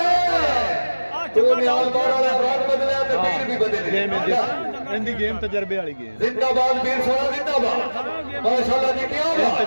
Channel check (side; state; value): both; inverted; correlation -1.00